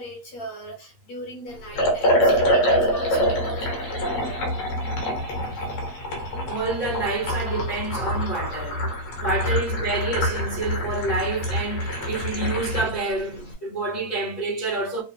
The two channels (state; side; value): late; right; 8.5 ms